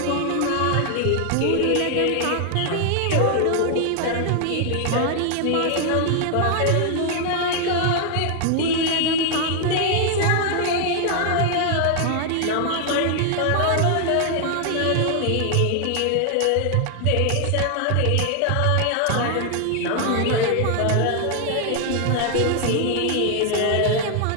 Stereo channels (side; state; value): both; different; correlation 0.00